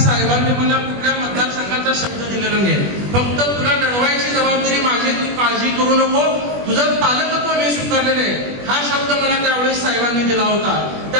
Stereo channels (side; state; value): left; late; 20 ms